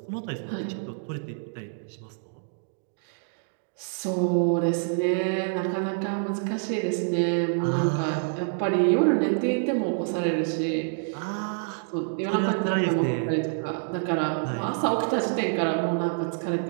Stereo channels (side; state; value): left; silent; digital silence